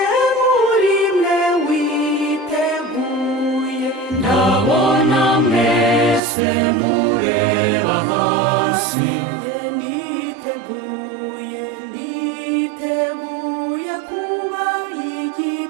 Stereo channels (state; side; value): drops out; left; at 6.2 s